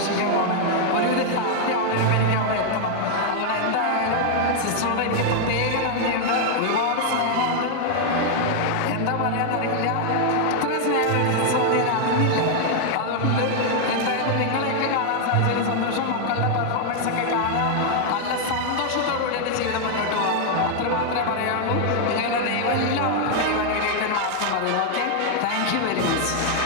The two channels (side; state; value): both; different; correlation 0.00